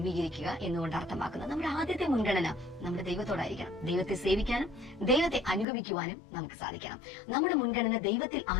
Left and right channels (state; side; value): drops out; right; at 5.7 s